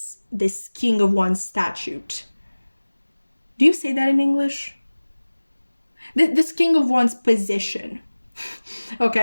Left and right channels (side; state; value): both; inverted; correlation -1.00